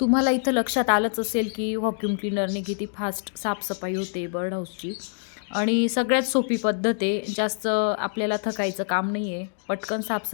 इथं लक्षात आलंच असेल की व्हॅक्यूम क्लीनरने किती फास्ट साफसफाई होते बर्ड हाऊसची. आणि सगळ्यात सोपी पद्धत आहे, जास्त आपल्याला थकायचं काम नाही आहे, पटकन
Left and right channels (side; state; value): right; silent; 61 dB below the other